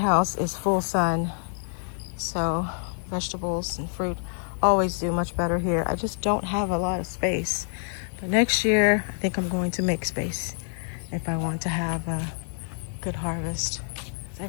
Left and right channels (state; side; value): silent; right; 60 dB below the other